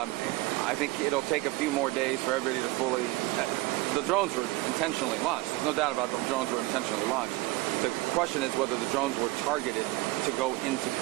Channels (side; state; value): left; quieter; 20.0 dB